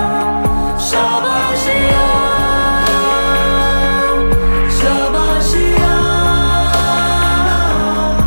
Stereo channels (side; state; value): both; inverted; correlation -1.00